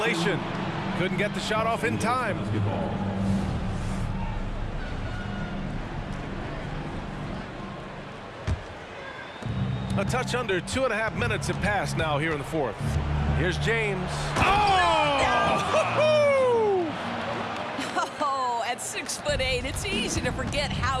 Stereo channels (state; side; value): identical; both; correlation 1.00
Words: Couldn't get the shot off in time. A touch under 2.5 minutes have passed now here in the fourth. Here's James. Oh! Oh, at 6'8", it's easy to forget how